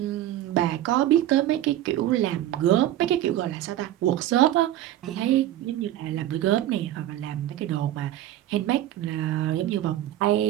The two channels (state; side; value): quieter; left; 13.1 dB